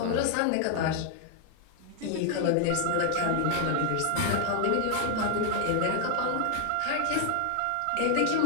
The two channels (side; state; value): both; different; correlation 0.00